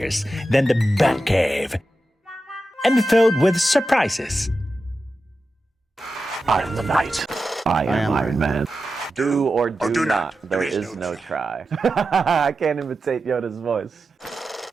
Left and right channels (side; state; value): both; normal; correlation 0.91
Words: than the Batcave, and filled with surprises. I am the Knight. I am Iron Man. Do or do not. There is no try. I can't imitate Yoda's voice.